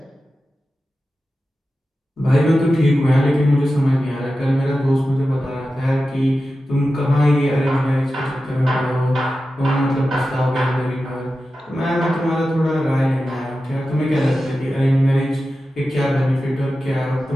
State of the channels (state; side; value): normal; both; correlation 0.93